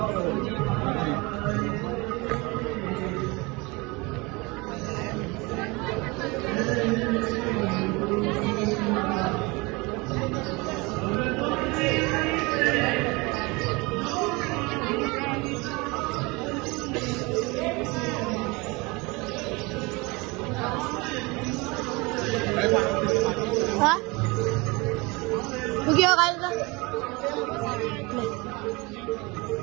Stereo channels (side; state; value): left; quieter; 25.6 dB